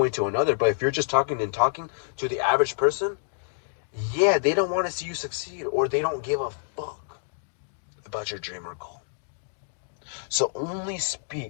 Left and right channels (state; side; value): silent; right; digital silence